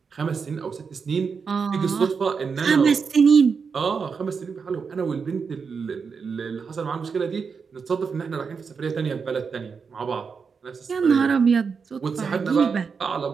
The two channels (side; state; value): left; quieter; 5.6 dB